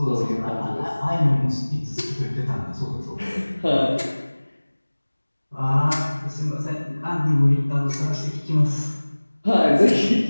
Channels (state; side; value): inverted; both; correlation -1.00